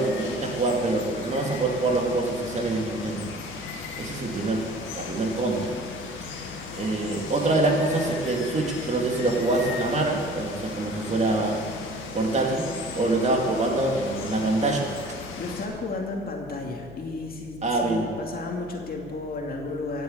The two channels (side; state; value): left; noise; hum, 19 dB below the sound